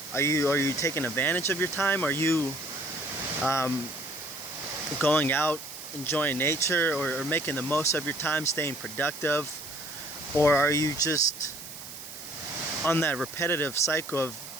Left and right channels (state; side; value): noise; right; hiss, 13 dB below the sound